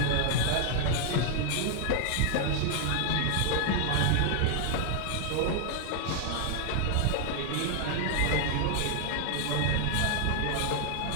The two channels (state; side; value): different; both; correlation 0.00